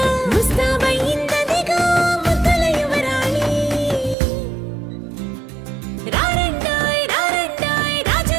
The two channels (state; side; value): drops out; left; at 4.2 s